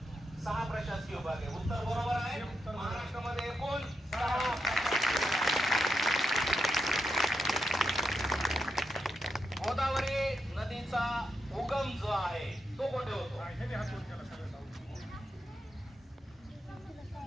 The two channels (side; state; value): both; normal; correlation 0.85